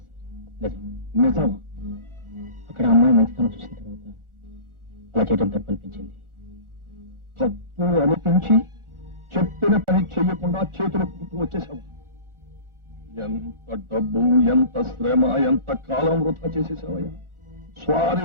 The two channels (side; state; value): left; late; 1.4 ms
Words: సార్, నిజం. నిజమా? అక్కడ అమ్మాయి మంచితనం చూసిన తర్వాత అలా చేయడం తప్పు అనిపించింది. తప్పు అనిపించి చెప్పిన పని చెయ్యకుండా చేతులు పుట్టు వచ్చేసావు. ఎంత డబ్బు, ఎంత శ్రమ, ఎంత కాలం వృధా చేసేసావయ్యా. స్వారీ